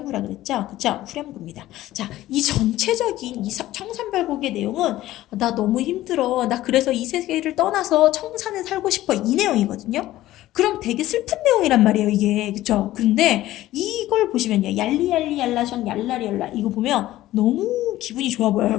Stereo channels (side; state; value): right; quieter; 15.3 dB